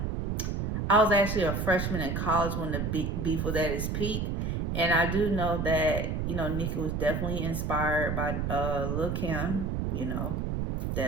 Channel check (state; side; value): noise; right; rumble, 1 dB below the sound